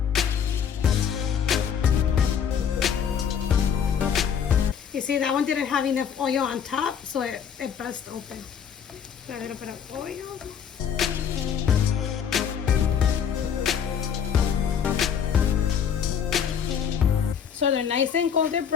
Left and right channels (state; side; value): quieter; right; 7.8 dB